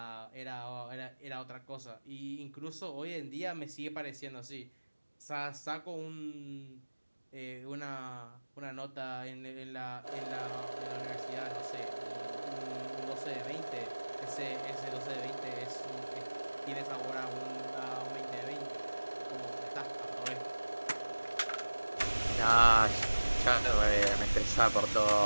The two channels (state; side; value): inverted; both; correlation -1.00